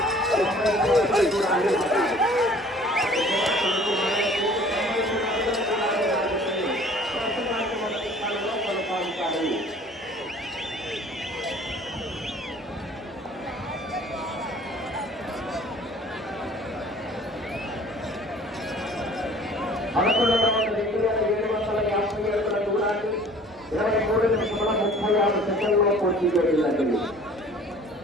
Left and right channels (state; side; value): normal; both; correlation 0.50